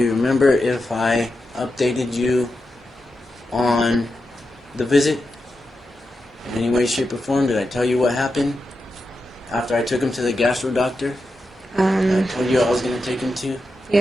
remember if I updated you on the visit in any way, shape, or form? Did I tell you what happened after I took him to the gastro doctor? I told you I was going to take him to? Yeah,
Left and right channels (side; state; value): both; normal; correlation 0.89